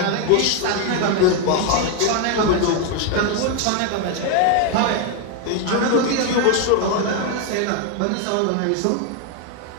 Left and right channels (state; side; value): different; both; correlation 0.01